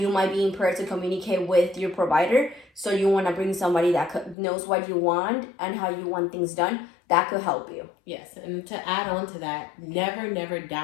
might be impaired to communicate with your provider. So you want to bring somebody that knows what you want and how you want things done. That could help you. Yes, and to add on to that, never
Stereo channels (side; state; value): right; drops out; at 4.4 s